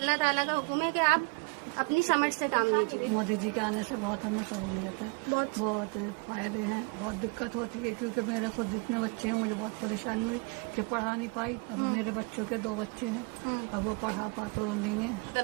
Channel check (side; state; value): left; quieter; 29.5 dB